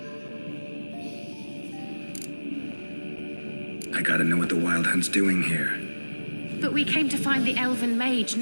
I gotta know what the Wild Hunt's doing here. But we came to find the elven mage,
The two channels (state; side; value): inverted; both; correlation -1.00